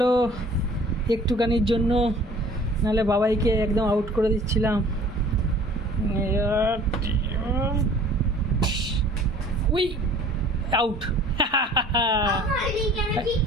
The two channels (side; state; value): both; normal; correlation 0.50